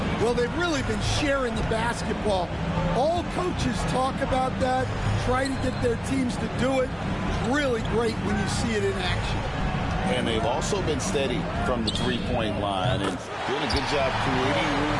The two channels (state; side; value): identical; both; correlation 1.00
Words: Well, they've really been sharing the basketball. All coaches talk about that, try to get their teams to do it. It's really great when you see it in action. And they've also been steady from the three-point line and doing a good job creating room